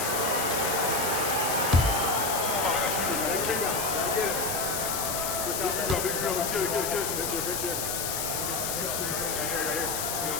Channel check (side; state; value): left; noise; hiss, 1 dB below the sound